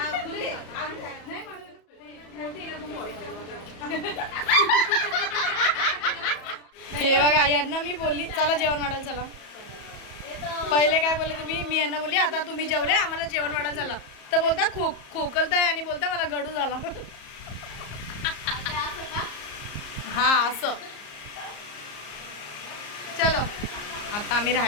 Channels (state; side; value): late; right; 34 ms